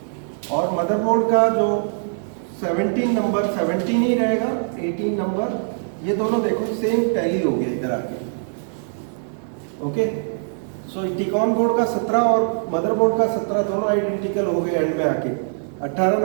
और मदरबोर्ड का जो 17 नंबर 17 ही रहेगा, 18 नंबर, ये दोनों देखो सेम टैली हो गया इधर आके, ओके। सो टिकॉन बोर्ड का 17 और मदरबोर्ड का 17 दोनों आइडेंटिकल हो गए एंड में आके, 18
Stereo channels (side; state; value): left; silent; digital silence